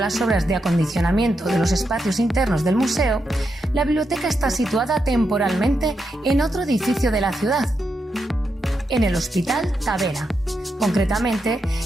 obras de acondicionamiento de los espacios internos del museo, la biblioteca está situada temporalmente en otro edificio de la ciudad, en el Hospital Tavera, concretamente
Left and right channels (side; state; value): both; normal; correlation 0.84